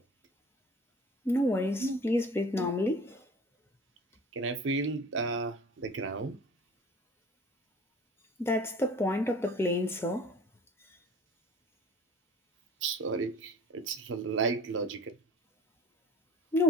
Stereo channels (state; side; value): normal; both; correlation 0.44